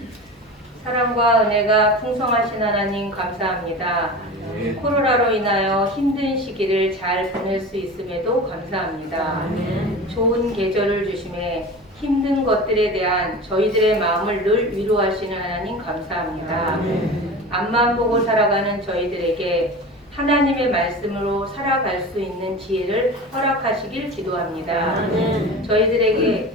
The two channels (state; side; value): normal; both; correlation 0.32